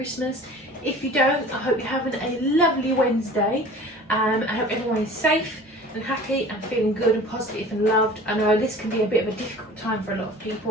If you don't, I hope you're having a lovely Wednesday. I hope everyone is safe and happy and feeling good and positive and loved. I know this can be a bit of a difficult time for a lot of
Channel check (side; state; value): both; normal; correlation 0.43